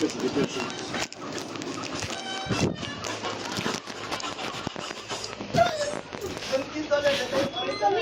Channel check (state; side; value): identical; both; correlation 1.00